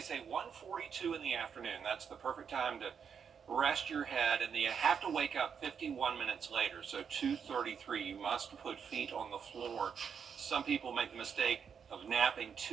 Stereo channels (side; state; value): left; quieter; 7.0 dB